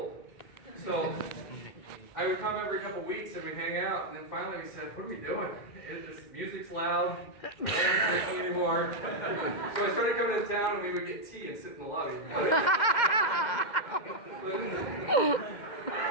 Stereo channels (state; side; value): late; right; 2.1 ms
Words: So I would come every couple weeks and we'd hang out, and then finally we said, what are we doing? This music's loud, we're not drinking anymore. So I started coming to town and we would get tea and sit in the lobby. But